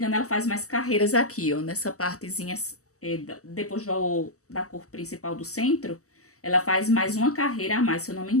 ela faz mais carreiras aqui, ó, nessa partezinha, depois da cor principal do centro, ela faz mais uma carreira a mais, se eu não me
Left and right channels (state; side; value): late; right; 0.65 ms